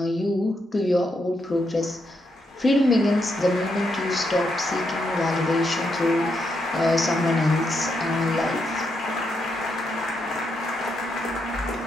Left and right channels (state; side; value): normal; both; correlation 0.80